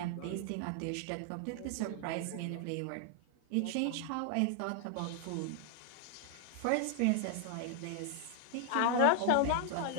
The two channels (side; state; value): both; different; correlation 0.00